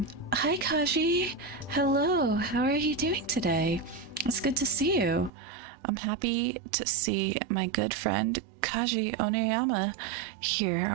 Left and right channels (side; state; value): left; drops out; at 5.3 s